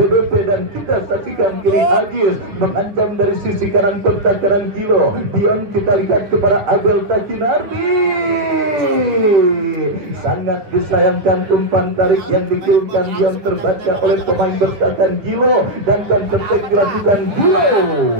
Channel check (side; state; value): left; late; 10 ms